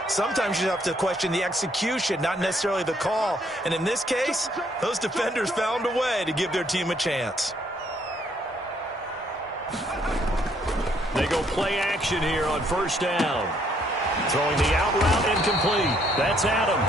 Sometimes you have to question the execution, not necessarily the call. And in this case, those defenders found a way to give their team a chance. They go play action here on first down. Throwing the out route incomplete. That's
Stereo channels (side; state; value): both; normal; correlation 0.68